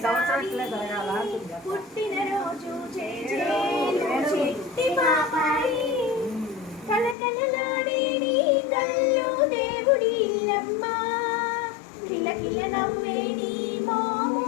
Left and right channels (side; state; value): right; drops out; at 7.2 s